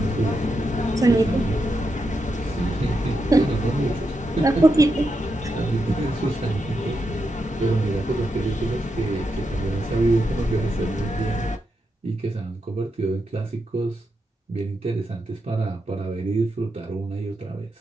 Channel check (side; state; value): both; normal; correlation 0.85